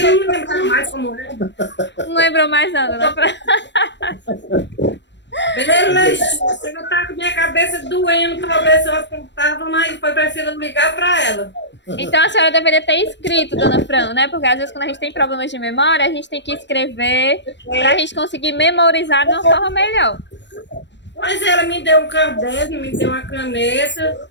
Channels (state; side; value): late; right; 0.52 ms